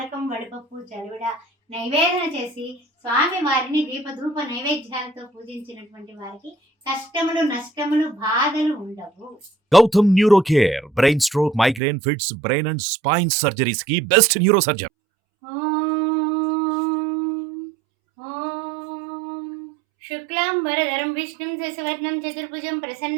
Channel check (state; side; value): drops out; left; at 11.8 s